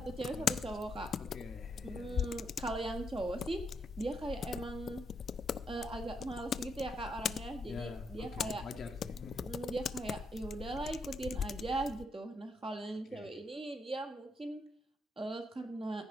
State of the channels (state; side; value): normal; both; correlation 0.78